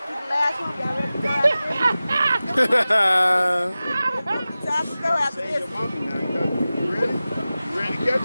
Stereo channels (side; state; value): both; inverted; correlation -0.96